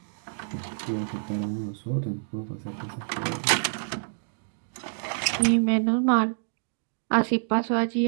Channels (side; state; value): left; silent; digital silence